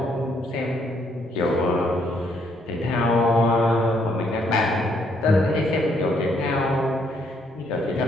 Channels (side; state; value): both; normal; correlation 0.71